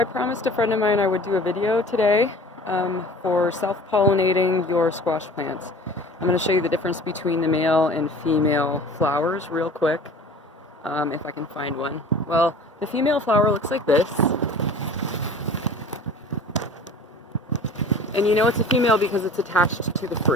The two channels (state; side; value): normal; both; correlation 0.43